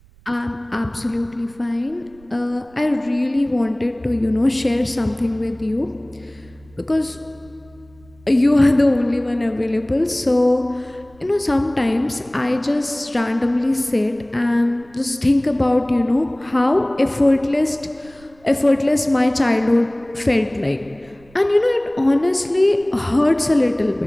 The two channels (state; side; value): noise; right; rumble, 28 dB below the sound